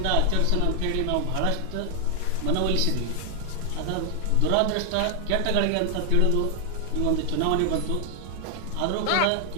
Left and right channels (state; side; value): different; both; correlation 0.00